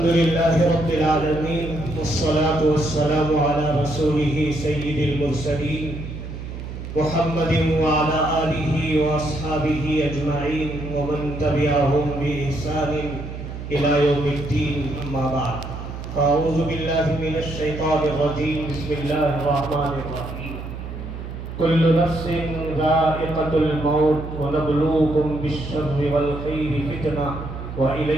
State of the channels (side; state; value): right; noise; hum, 9 dB below the sound